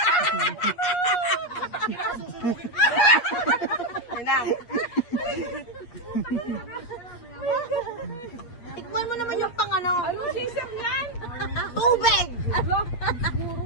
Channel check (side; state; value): right; late; 8.4 ms